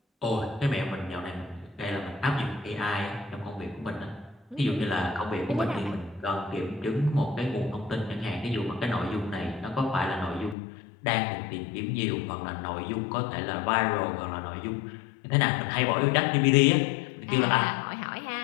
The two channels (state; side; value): drops out; right; at 10.6 s